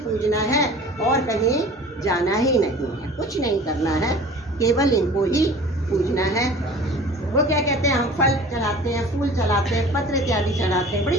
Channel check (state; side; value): normal; both; correlation 0.43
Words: है और कहीं जाना ही नहीं है। कुछ नहीं करना है, केवल इनको ही पूजना है। वो क्या कहते हैं, हम फल चढ़ाते हैं, फूल चढ़ाते हैं, पत्र इत्यादि चढ़ाते हैं, बड़ी